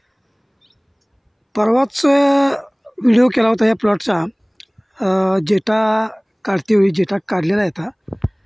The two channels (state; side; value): identical; both; correlation 1.00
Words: परवाच व्हिडिओ केला होता या प्लॉटचा. जेटा काढतेवेळी जेटा काढलेला आहे आता,